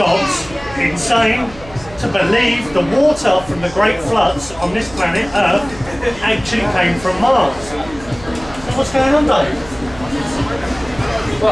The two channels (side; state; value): right; noise; hum, 18 dB below the sound